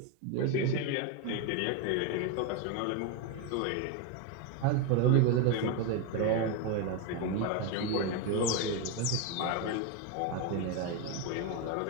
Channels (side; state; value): both; different; correlation 0.02